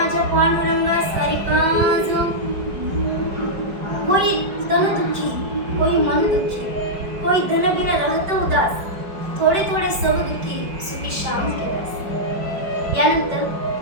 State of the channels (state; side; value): late; left; 5.1 ms